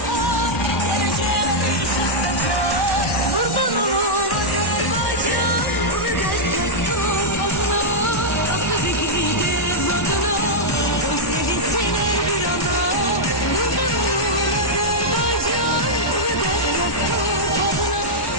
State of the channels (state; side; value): late; right; 1.1 ms